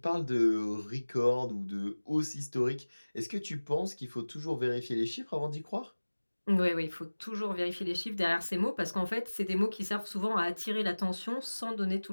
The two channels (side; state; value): both; inverted; correlation -1.00